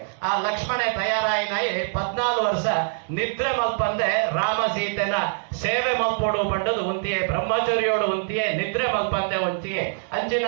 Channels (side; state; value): left; silent; digital silence